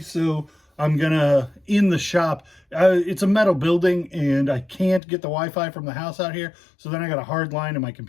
I'm gonna in the shop. It's a metal building, and I can't get the Wi-Fi from the house out here, so then I got a hard line, and my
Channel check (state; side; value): drops out; right; at 5.0 s